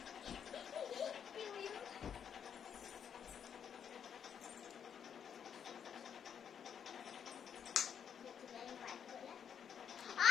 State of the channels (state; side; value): quieter; right; 8.0 dB